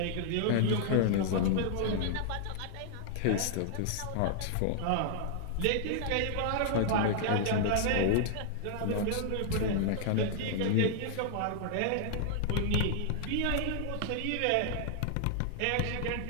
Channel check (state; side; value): different; both; correlation -0.01